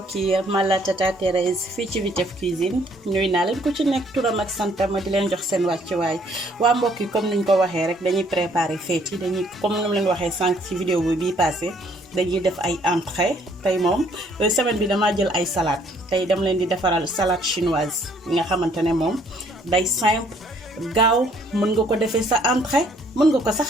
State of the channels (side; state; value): both; normal; correlation 0.64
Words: yi man la Tata Thérèse fii ci Vitef Cuisine nuyu naa leen ku ci nekk turam ak santam ma di leen jox seen wàccuwaay waa mbokk yi comme niñ ko waxee rek dañuy préparer fête yi dañuy comme ni mu leen waxee sànq ci vidéo bi bii passé dañuy def ay entrée tey moom semaine bi damaa jël ay salade tey dama leen di defaral salade chinoise yi nga xamante ne moom day simple gaaw mën nga ko defee sa entrée mën nga ko